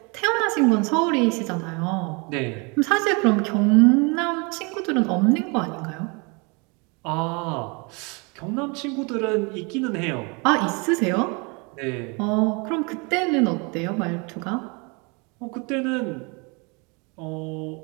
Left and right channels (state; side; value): quieter; left; 30.8 dB